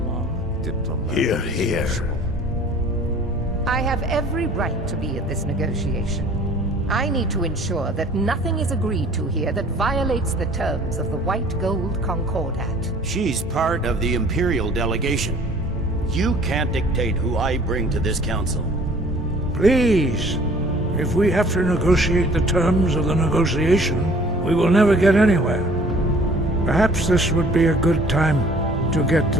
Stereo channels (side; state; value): both; normal; correlation 0.52